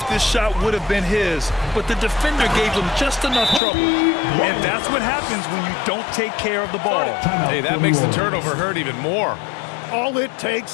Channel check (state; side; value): drops out; right; at 3.6 s